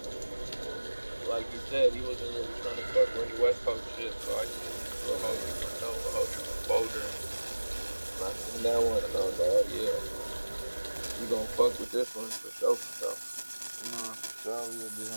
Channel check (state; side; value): inverted; both; correlation -1.00